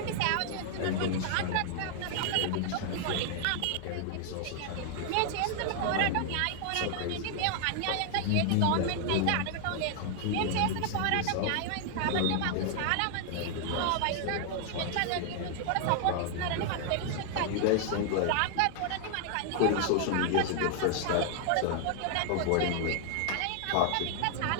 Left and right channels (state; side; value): different; both; correlation 0.00